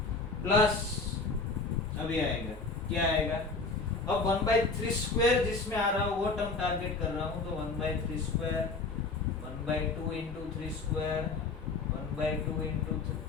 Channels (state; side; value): quieter; right; 3.9 dB